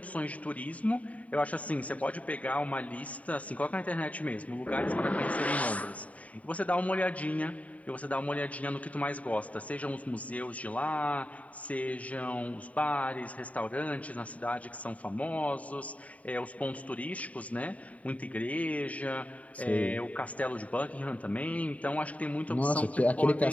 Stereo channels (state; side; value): late; right; 0.068 ms